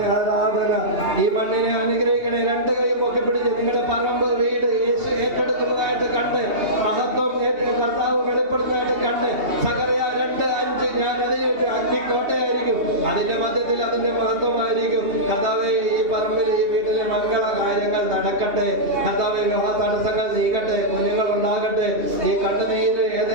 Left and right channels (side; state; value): left; late; 2.7 ms